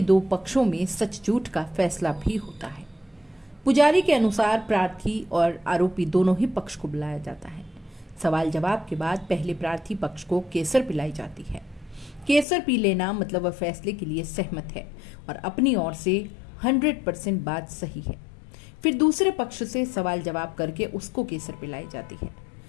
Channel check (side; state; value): right; drops out; at 12.5 s